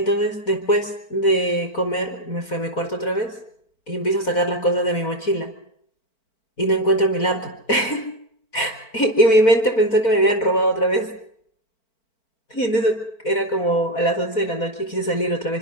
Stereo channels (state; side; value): late; right; 4.1 ms